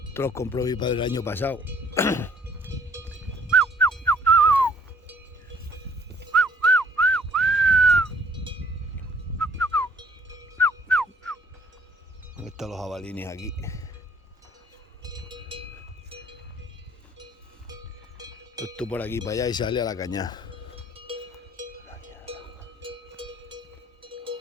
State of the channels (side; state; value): both; normal; correlation 0.60